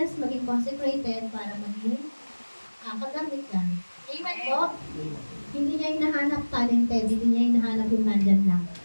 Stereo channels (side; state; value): both; inverted; correlation -1.00